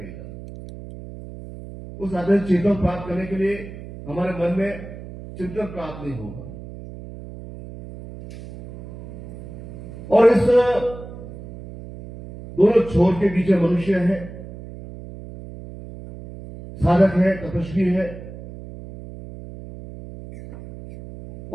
उस आध्यात्मिक चिंतन प्राप्त करने के लिए हमारे मन में चिंतन प्राप्त नहीं होगा। और इस दोनों छोर के बीच मनुष्य है, साधक है, तपस्वी है,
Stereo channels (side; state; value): right; noise; hum, 14 dB below the sound